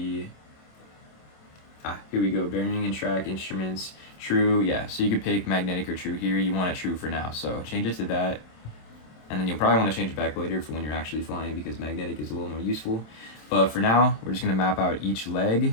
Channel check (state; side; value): late; right; 27 ms